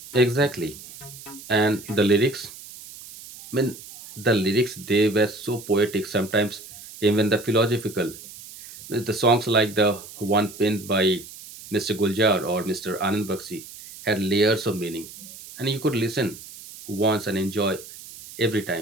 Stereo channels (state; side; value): noise; right; hiss, 16 dB below the sound